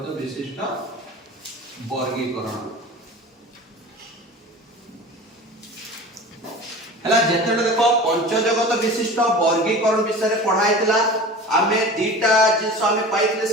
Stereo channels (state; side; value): normal; both; correlation 0.36